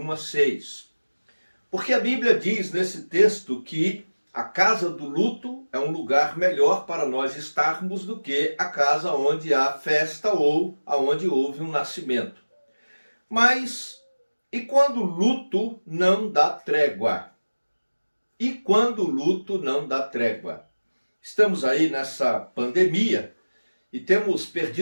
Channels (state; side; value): inverted; both; correlation -1.00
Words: a 6. Porque a Bíblia diz nesse texto que a casa do luto é um lugar melhor para nós estarmos do que a casa onde há festa ou aonde houve um nascimento. Mas e quando o luto não dá trégua? E quando o luto não dá trégua? Estamos aí nessa pandemia e temos